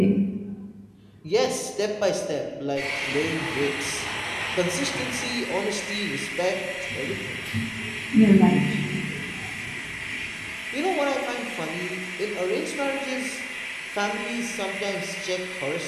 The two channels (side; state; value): both; identical; correlation 1.00